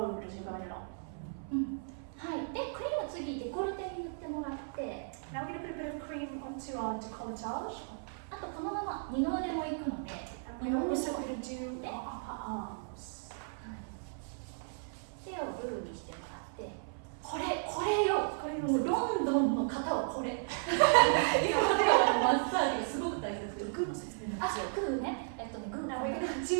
as you're going along. はい。でクリーム次デコルテに塗ってもらって、 Now we're going to put a bit of cream onto our décolletage. あとこのまま二の腕も行くので、 And we're also going to do our upper arms. 手をグーにしてもらって、これよ、もうロンドンの方はこれ。今まではマッサージがすごく大切です。グーの説明なんですよ。グーね、グー。 Now we're going to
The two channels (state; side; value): silent; left; 54 dB below the other